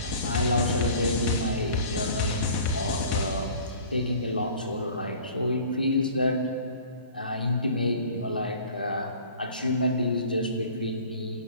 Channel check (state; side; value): inverted; both; correlation -0.46